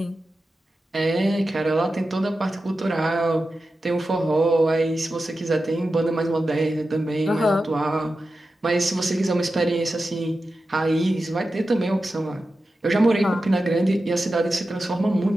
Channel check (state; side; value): normal; both; correlation 0.92